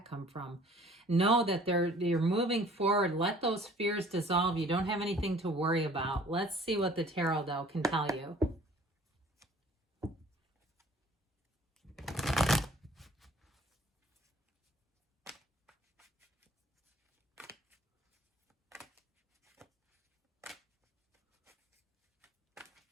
come from? Know that you're moving forward. Let those fears dissolve. You don't have anything to worry about. Let's see what the tarot, though, can tell you.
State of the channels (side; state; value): both; normal; correlation 0.52